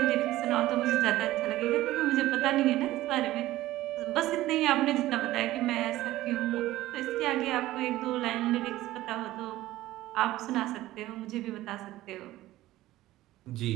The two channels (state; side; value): quieter; left; 16.0 dB